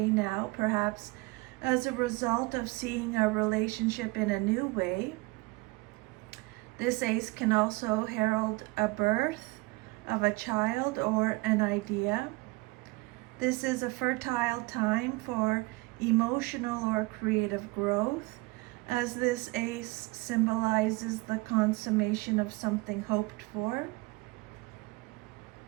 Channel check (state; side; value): quieter; left; 23.6 dB